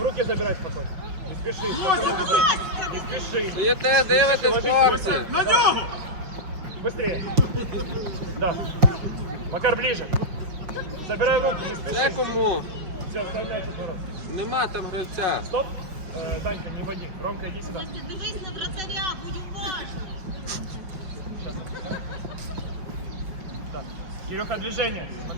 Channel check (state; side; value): late; left; 5.6 ms